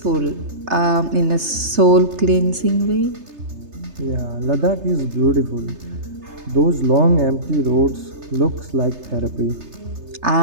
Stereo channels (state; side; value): late; left; 3.3 ms